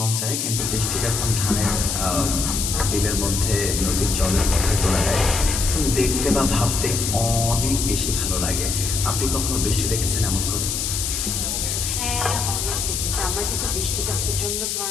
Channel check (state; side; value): noise; left; hiss, 1 dB below the sound